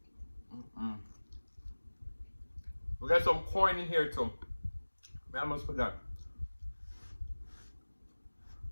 We got some corn in here too. I almost forgot.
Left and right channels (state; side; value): inverted; both; correlation -1.00